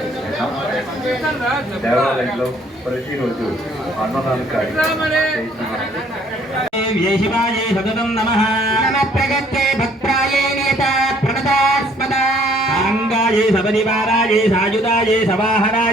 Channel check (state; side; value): normal; both; correlation 0.61